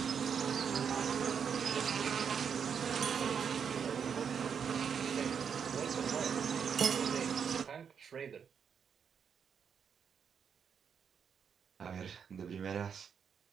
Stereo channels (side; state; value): left; quieter; 7.1 dB